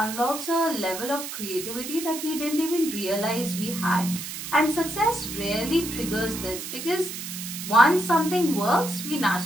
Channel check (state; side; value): noise; right; hiss, 8 dB below the sound